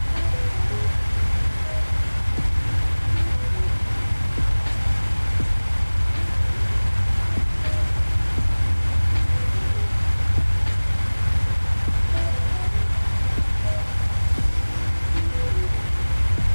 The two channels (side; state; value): both; inverted; correlation -1.00